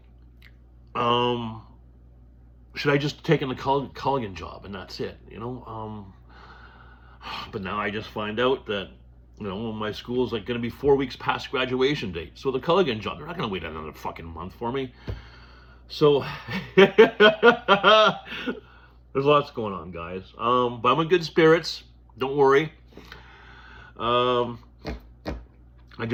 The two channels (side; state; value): both; identical; correlation 1.00